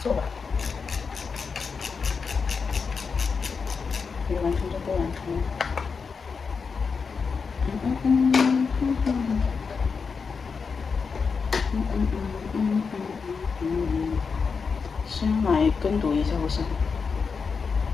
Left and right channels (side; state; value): right; quieter; 5.3 dB